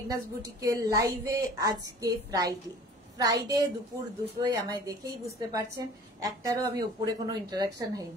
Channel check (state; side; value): normal; both; correlation 0.46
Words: বুটিকের লাইভে। আজকে ফ্রাইডে দুপুর 2টোয়, আমায় দেখেই বুঝতে পারছেন একটারও আমি উপরে কোনো ইন্টারাকশন